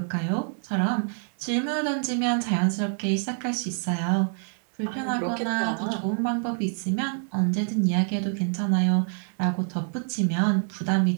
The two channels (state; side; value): silent; left; 56 dB below the other